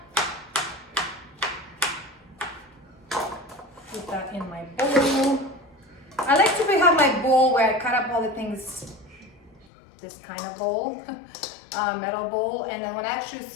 Put that in my bowl. I like to have my bowl where I cut up all the things, this kind of bowl, metal bowl, and then when I actually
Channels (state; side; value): drops out; right; at 9.7 s